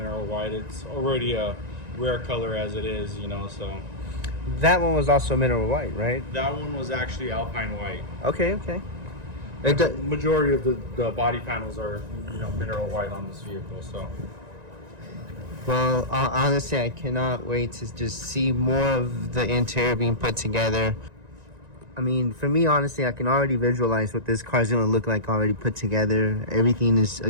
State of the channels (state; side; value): late; left; 1.9 ms